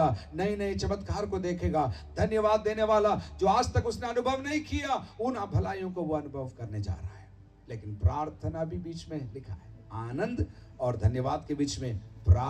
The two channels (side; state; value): both; identical; correlation 1.00